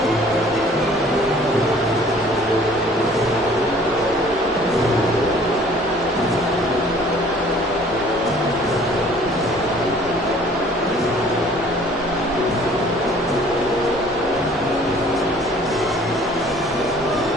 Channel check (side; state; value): both; normal; correlation 0.53